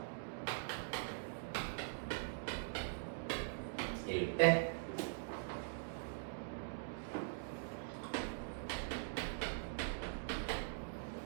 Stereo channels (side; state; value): left; silent; digital silence